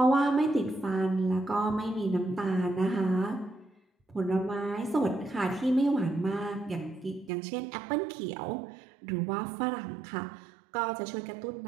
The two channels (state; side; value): drops out; left; at 7.3 s